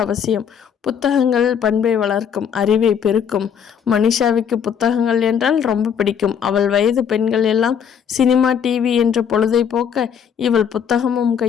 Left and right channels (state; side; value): quieter; right; 7.8 dB